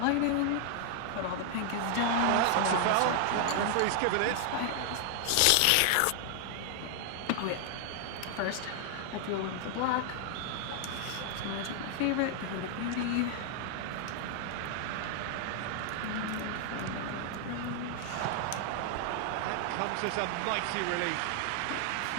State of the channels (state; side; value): different; both; correlation 0.00